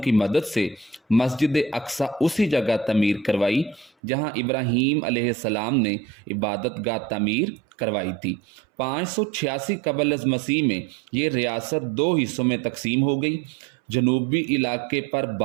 مدد سے مسجد اقصیٰ اسی جگہ تعمیر کروائی جہاں ابراہیم علیہ السلام نے عبادت گاہ تعمیر کروائی تھی۔ 586 قبل از مسیح میں یہ ریاست 2 حصوں میں تقسیم ہو گئی۔ جنوبی علاقے پر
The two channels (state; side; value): drops out; left; at 3.9 s